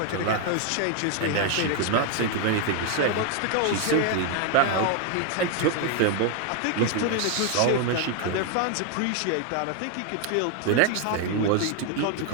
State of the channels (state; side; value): different; both; correlation 0.01